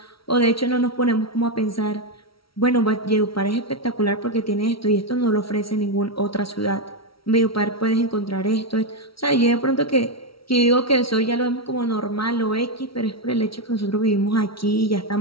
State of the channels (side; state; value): right; late; 0.75 ms